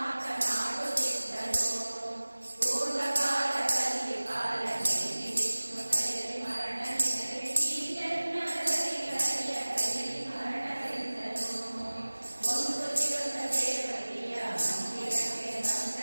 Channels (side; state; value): both; inverted; correlation -1.00